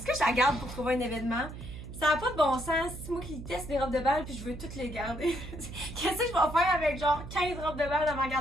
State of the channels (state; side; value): noise; right; hum, 11 dB below the sound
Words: que je la garde pour trouver un événement? Ça n'a pas de bon sens. C'est moi qui teste des robes de bal puis je veux toutes les garder. Qu'est-ce que je vais faire avec genre 15 robes de bal dans ma